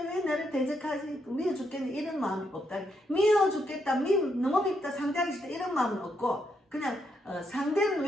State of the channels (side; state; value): both; normal; correlation 0.78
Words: 왜 나를 대적하지 미워 죽겠네 이런 마음이 없다. 미워 죽겠다 너무 밉다 상대하기 싫다 이런 마음은 없고 그냥 상대는